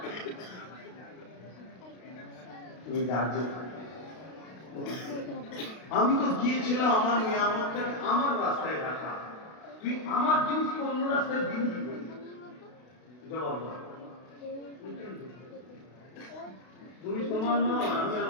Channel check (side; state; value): right; late; 32 ms